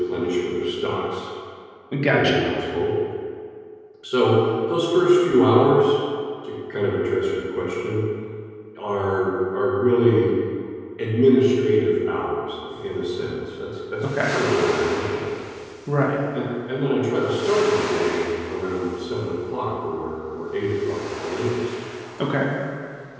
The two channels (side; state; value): both; identical; correlation 1.00